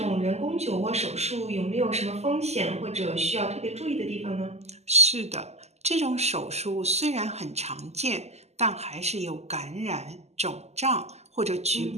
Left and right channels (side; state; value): left; late; 0.32 ms